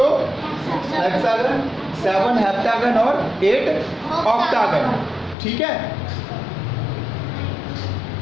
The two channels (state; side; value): drops out; right; at 5.4 s